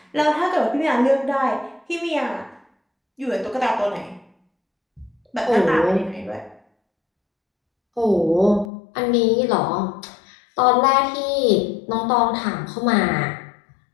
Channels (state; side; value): drops out; right; at 8.7 s